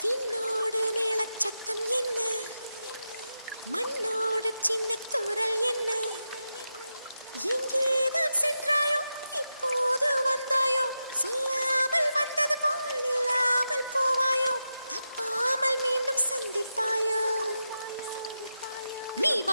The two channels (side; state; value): both; inverted; correlation -0.89